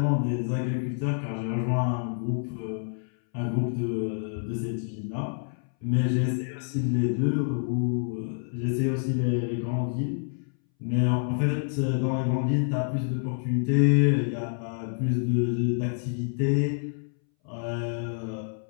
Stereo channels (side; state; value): right; silent; 60 dB below the other